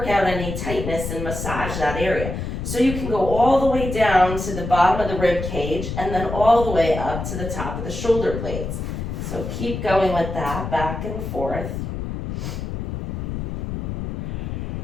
out any tightness and massage that area. So you can go all the way down to the bottom of the rib cage and then all the way up to the top of the shoulder blades. So keep going with that, back and forth.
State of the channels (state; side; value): noise; left; rumble, 5 dB below the sound